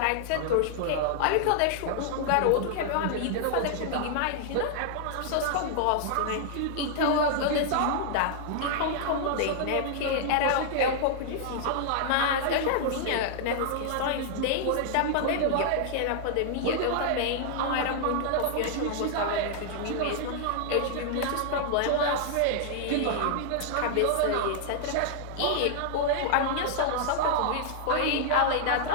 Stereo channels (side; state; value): both; different; correlation -0.01